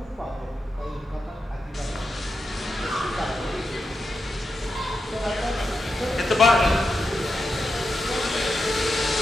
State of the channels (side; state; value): both; normal; correlation 0.88